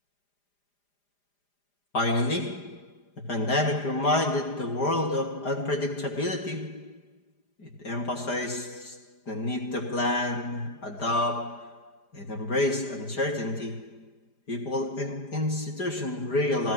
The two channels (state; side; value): late; right; 4.9 ms